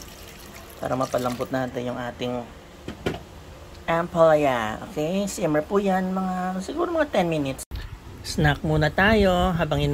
para mapalambot natin yung ating ampalaya. Okay? Simmer po yan siguro mga 10 minutes. Snack muna tayo habang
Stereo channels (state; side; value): identical; both; correlation 1.00